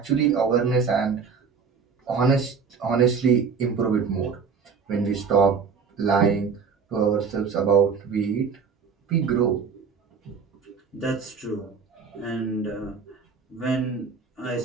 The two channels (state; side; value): quieter; left; 5.7 dB